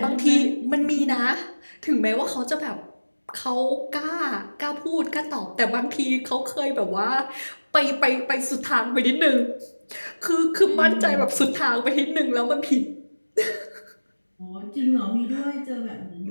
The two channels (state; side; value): inverted; both; correlation -1.00